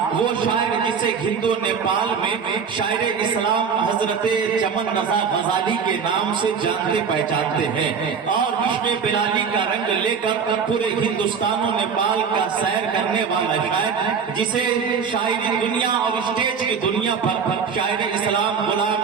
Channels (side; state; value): left; quieter; 6.3 dB